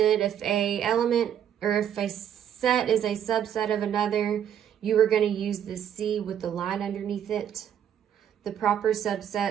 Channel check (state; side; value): quieter; left; 9.5 dB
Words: if a element or if a set is a subset of another, you are going to use the C with the line underneath it. The proper